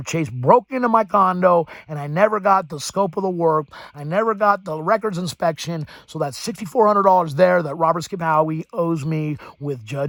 Chase broke into my condo, and I never got the scope of the work. I never got the records inspection. So that's $6,400 there that Robert Skip Howie owes me with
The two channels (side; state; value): both; identical; correlation 1.00